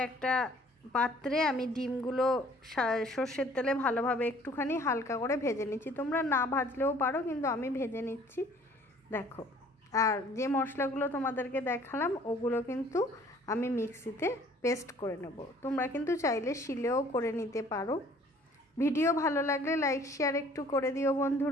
একটা পাত্রে আমি ডিমগুলো সর্ষের তেলে ভালোভাবে একটুখানি হালকা করে ভেজে নিচ্ছি। তোমরা না ভাজলেও পারো, কিন্তু আমি ভেজে নিচ্ছি। দেখো, আর যে মশলাগুলো তোমাদেরকে দেখালাম ওগুলো কিন্তু আমি মিক্সিতে পেস্ট করে নেব। তোমরা কিন্তু চাইলে শিলেও করে নিতে পারো। ভিডিও ভালো লাগলে লাইক শেয়ার একটু করে দিও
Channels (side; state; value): both; normal; correlation 0.55